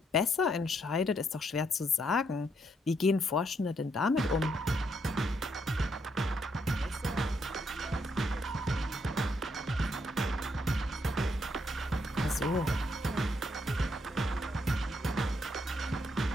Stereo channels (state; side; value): normal; both; correlation 0.75